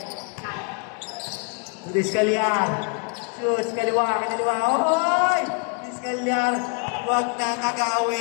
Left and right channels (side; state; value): right; quieter; 35.5 dB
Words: Diskalyan. Shoes, kaliwa. Oy! Diskalyan. Huwag na